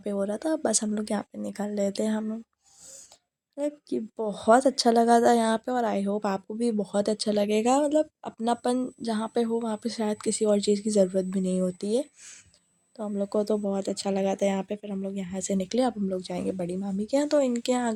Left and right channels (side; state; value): both; identical; correlation 1.00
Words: पे हो रहा था, बस हम लोग यहाँ पे निकल रहे थे। हम मतलब कि बहुत अच्छा लगा था यहाँ पे, और आई होप आपको भी बहुत अच्छा लगेगा। मतलब अपनापन जहाँ पे हो वहाँ पे शायद किसी और चीज़ की ज़रूरत भी नहीं होती है। तो हम लोग को तो बहुत अच्छा लगा था यहाँ पे। फिर हम लोग यहाँ से निकले, अब हम लोग जाएंगे बड़ी मामी के यहाँ। तो इनके यहाँ